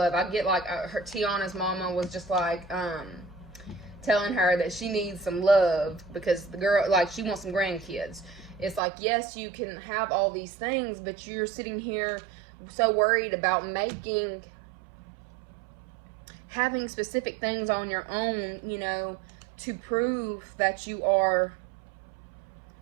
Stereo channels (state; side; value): drops out; left; at 8.8 s